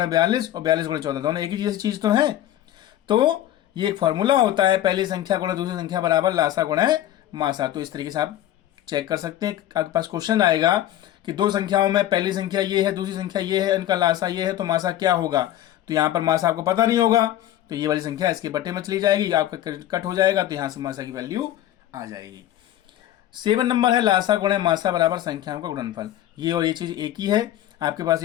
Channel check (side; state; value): right; quieter; 12.8 dB